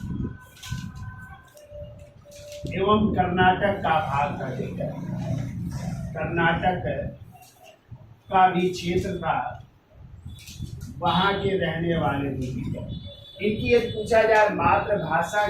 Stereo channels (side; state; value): both; identical; correlation 1.00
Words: एवं कर्नाटक का भाग था, ठीक है। कर्नाटक का भी क्षेत्र था, वहां के रहने वाले थे, ठीक है। इनकी यदि पूछा जाए मातृभाषा